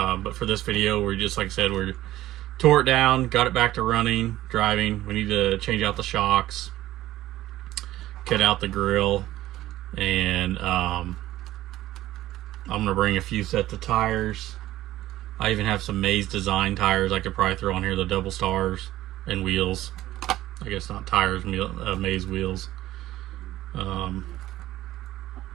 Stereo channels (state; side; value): quieter; left; 15.0 dB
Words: for this video, we're just, like I said, we tore it down, got it back to running, driving. We need to change out the shocks, cut out the grill, and I'm gonna bring a few sets of tires. I even have some Maze design tires I could probably throw on here, the double stars, and wheels. I guess not tires, Maze wheels.